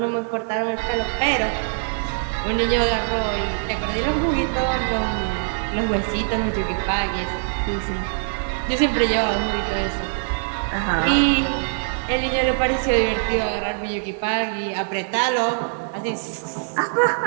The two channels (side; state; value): left; silent; digital silence